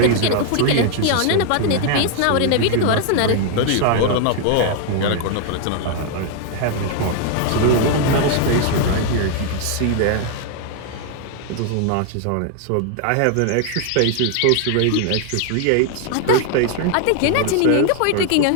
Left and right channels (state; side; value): different; both; correlation 0.00